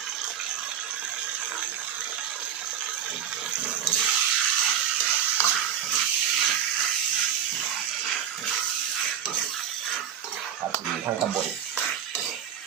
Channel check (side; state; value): left; quieter; 9.4 dB